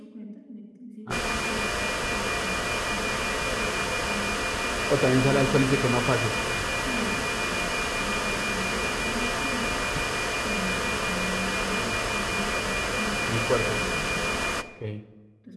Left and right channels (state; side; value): identical; both; correlation 1.00